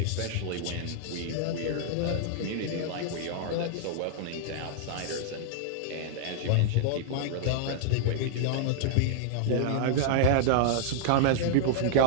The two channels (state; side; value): different; both; correlation -0.01